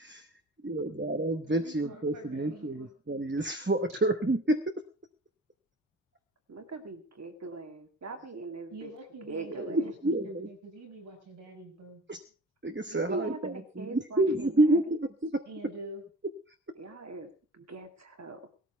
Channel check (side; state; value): both; normal; correlation 0.44